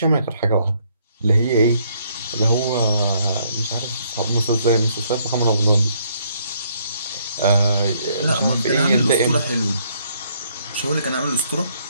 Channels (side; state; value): both; inverted; correlation -0.69